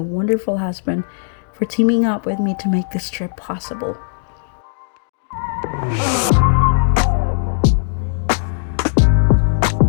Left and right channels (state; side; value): silent; right; digital silence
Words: husband for teaming up with me to make this trip possible.